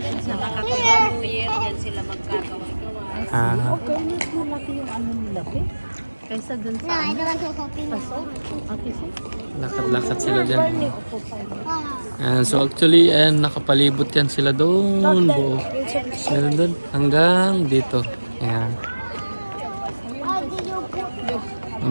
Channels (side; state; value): both; inverted; correlation -1.00